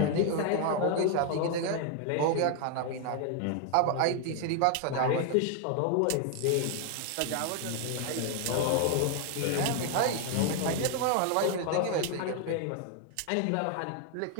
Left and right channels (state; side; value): different; both; correlation 0.00